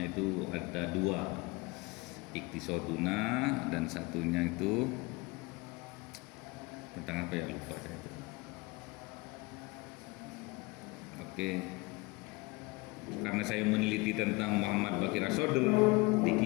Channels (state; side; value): quieter; right; 24.8 dB